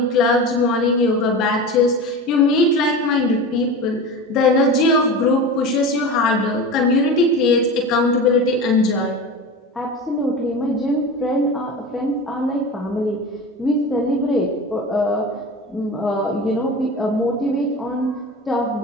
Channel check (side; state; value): both; normal; correlation 0.30